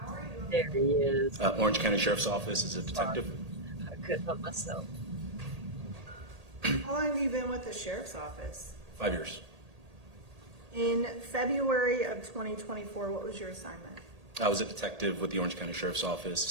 are you? There he is. Orange County Sheriff's Office as a detective. I couldn't help myself. How long have you been with the sheriff's office? 5 years. In February of 2024, what was your assignment? I was a detective with the Orange County Sheriff's Office,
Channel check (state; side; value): late; left; 1.8 ms